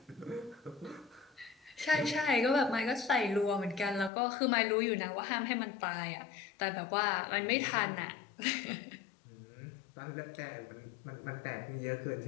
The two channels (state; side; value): drops out; right; at 4.1 s